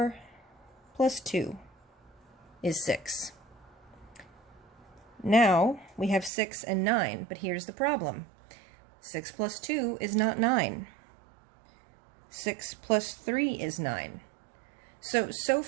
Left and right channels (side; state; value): left; drops out; at 6.3 s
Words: plus 2 is 6. Now we have 6 and 9, but here's the problem. 6 plus 2 is not 9. 6 plus 3 is 9. So